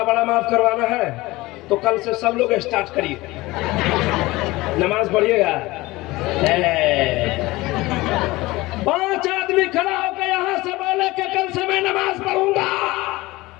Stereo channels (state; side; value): quieter; right; 20.2 dB